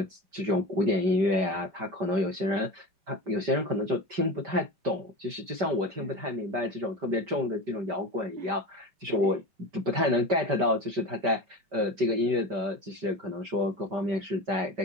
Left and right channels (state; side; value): late; left; 5.1 ms